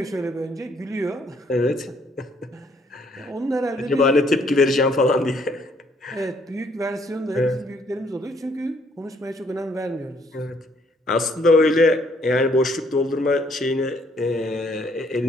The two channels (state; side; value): normal; both; correlation 0.67